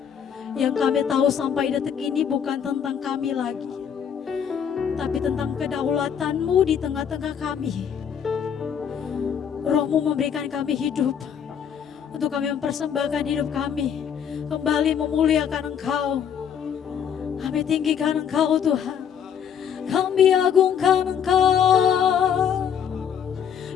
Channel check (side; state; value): right; quieter; 8.1 dB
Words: Yang kami tahu sampai detik ini bukan tentang kami lagi, tapi tentang kedaulatan-Mu di tengah-tengah kami. Roh-Mu memberikan kami hidup, untuk kami mempersembahkan hidup kami, kembali memuliakan Engkau. Kami tinggikan Engkau Tuhan, kami agungkan Engkau,